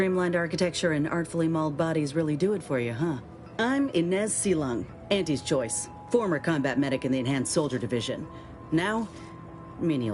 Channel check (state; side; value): identical; both; correlation 1.00